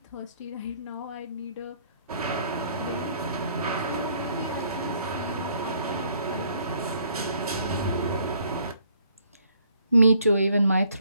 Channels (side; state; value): both; inverted; correlation -0.65